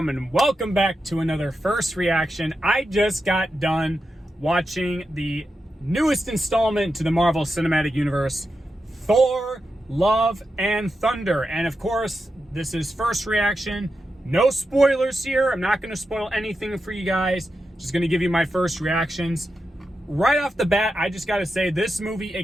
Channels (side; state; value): both; normal; correlation 0.88